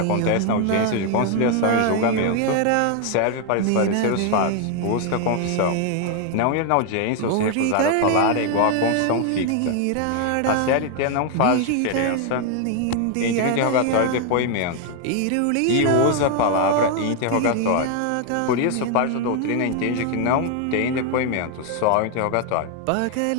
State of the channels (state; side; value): different; both; correlation 0.01